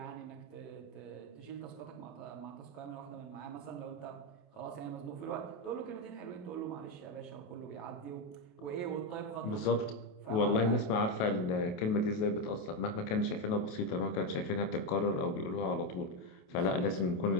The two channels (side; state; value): right; late; 28 ms